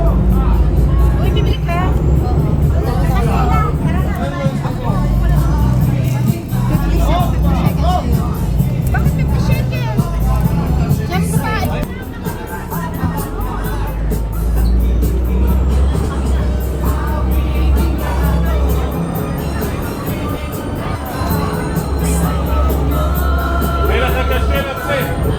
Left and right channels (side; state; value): both; identical; correlation 1.00